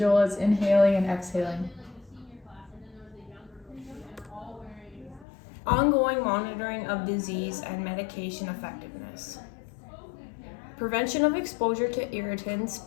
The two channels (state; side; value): drops out; right; at 5.2 s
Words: is inhaling and exhaling. Ongoing monitoring of disease and medication effectiveness. Prevention of exposure to irritants,